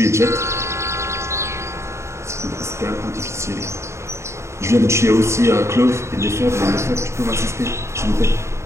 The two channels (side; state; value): left; late; 0.13 ms